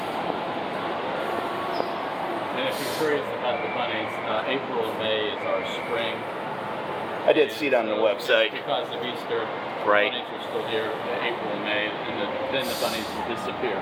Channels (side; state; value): both; identical; correlation 1.00